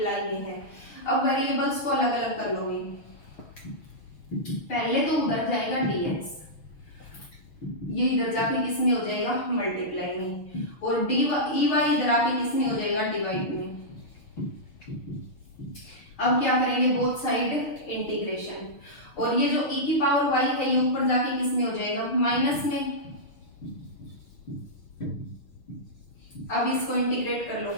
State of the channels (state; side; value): late; right; 6.6 ms